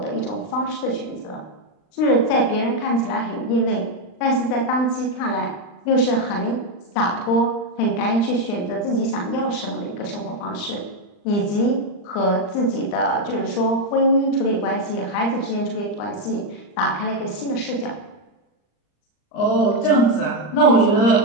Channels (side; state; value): right; late; 39 ms